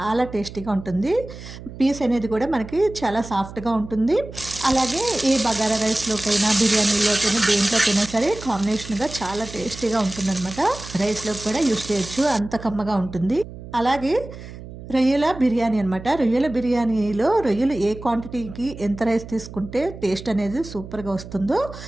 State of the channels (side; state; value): right; noise; hum, 14 dB below the sound